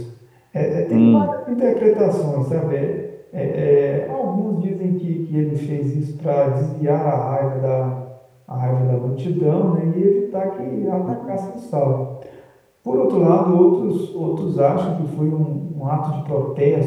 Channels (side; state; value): both; identical; correlation 1.00